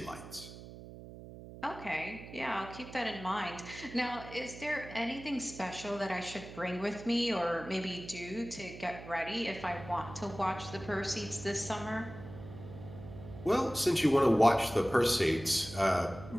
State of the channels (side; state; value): right; noise; hum, 14 dB below the sound